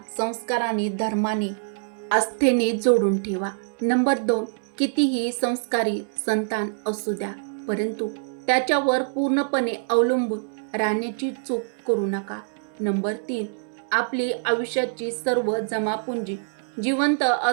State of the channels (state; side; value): silent; left; 62 dB below the other